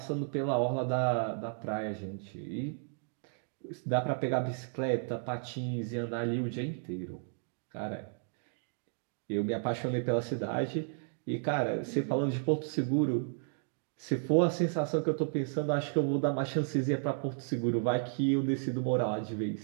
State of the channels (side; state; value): left; silent; 56 dB below the other